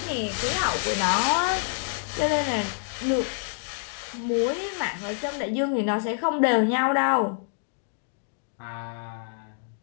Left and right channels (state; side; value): silent; right; digital silence